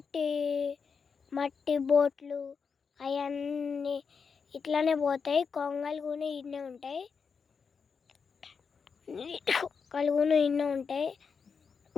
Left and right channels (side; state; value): right; quieter; 5.7 dB